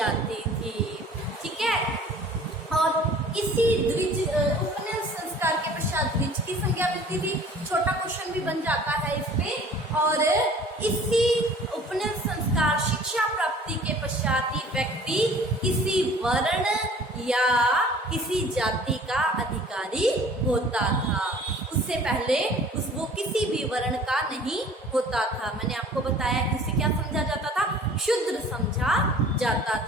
थी। ठीक है, और इसी द्विज उपनयन संस्कार के पश्चात द्विज की संज्ञा मिलती थी। छोटा क्वेश्चन भी बन जाता है इस पे। और इसी उपनयन संस्कार शिक्षा प्राप्ति के पश्चात ही व्यक्ति किसी वर्ण या किसी जाति का अधिकारी होता था। उससे पहले वो किसी भी वर्ण का नहीं होता था। मैंने आपको बताया कि उसे क्या समझा जाता था, शूद्र समझा जाता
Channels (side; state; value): both; normal; correlation 0.49